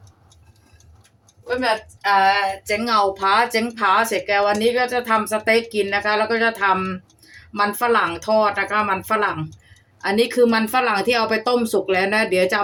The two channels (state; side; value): identical; both; correlation 1.00